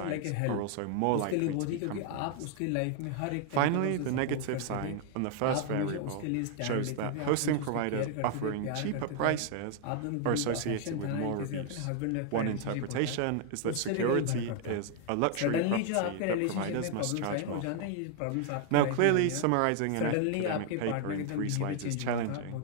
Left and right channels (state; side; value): different; both; correlation 0.00